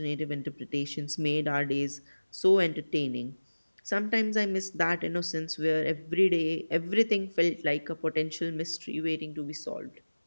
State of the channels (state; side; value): inverted; both; correlation -1.00